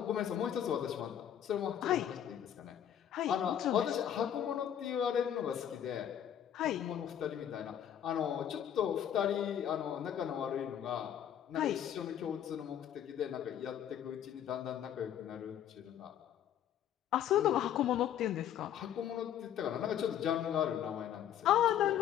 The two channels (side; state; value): right; quieter; 10.0 dB